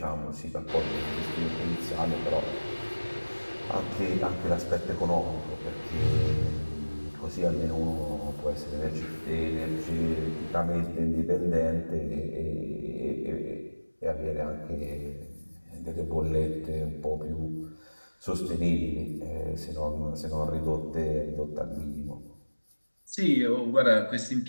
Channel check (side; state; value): both; inverted; correlation -1.00